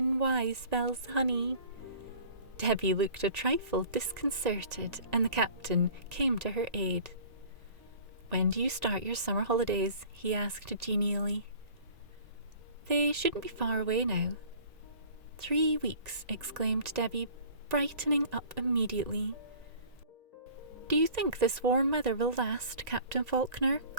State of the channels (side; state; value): left; late; 1.9 ms